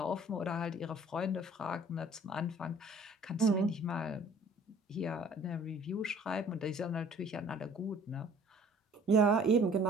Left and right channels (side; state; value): both; normal; correlation 0.52